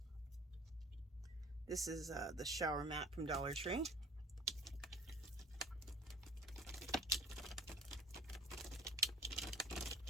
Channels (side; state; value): both; normal; correlation 0.43